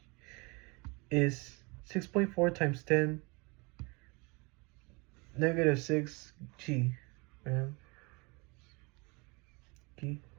is 6.4 times 10 negative 6 g.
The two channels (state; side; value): quieter; left; 28.2 dB